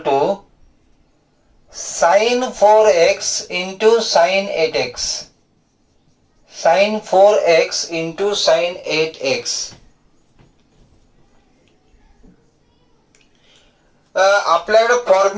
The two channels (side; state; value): both; identical; correlation 1.00